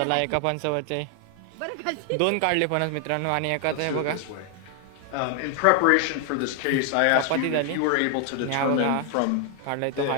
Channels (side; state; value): both; different; correlation 0.00